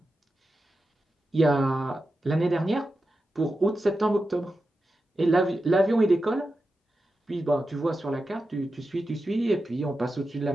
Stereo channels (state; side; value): normal; both; correlation 0.91